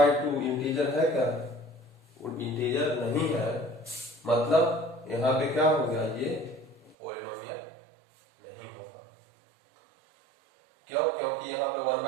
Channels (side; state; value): left; drops out; at 7.0 s